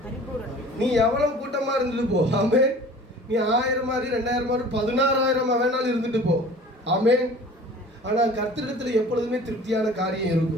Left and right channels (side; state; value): both; normal; correlation 0.45